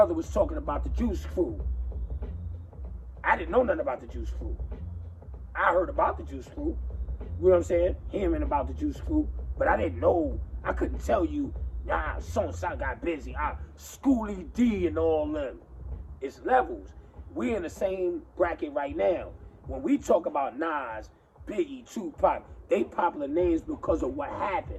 was talking about the Juice Crew. I didn't know nothing about the Juice Crew. I heard about the Juice Crew. You know what I'm saying? Hearing about the Juice Crew. But I didn't know. I couldn't tell you, nah, so-and-so got busy. Schoolie D and all them. It's levels. We're in the same bracket right now. When we talk about Nas, Biggie, Tupac, they popular names because of what happened.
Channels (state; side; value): identical; both; correlation 1.00